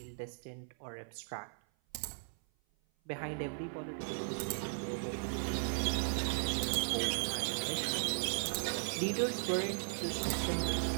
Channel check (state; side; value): silent; left; 53 dB below the other